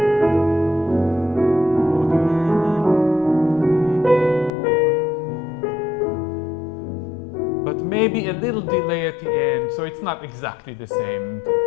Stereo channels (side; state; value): right; drops out; at 4.5 s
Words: But maybe a little delay at the end, so it's not exactly the same.